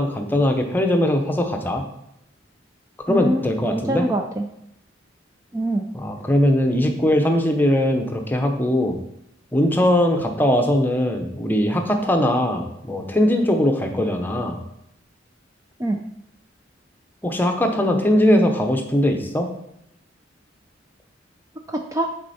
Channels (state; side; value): normal; both; correlation 0.77